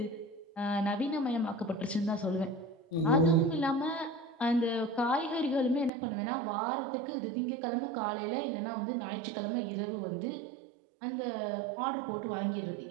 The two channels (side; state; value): left; drops out; at 5.9 s